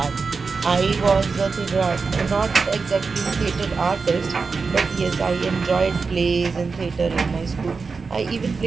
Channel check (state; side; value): quieter; left; 4.7 dB